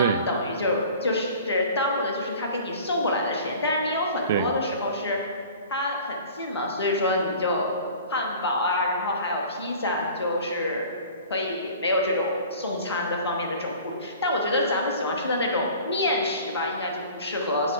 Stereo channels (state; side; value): inverted; both; correlation -0.44